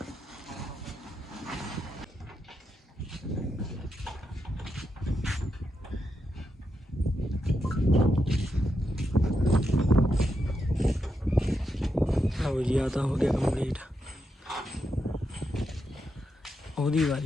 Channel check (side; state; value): both; normal; correlation 0.84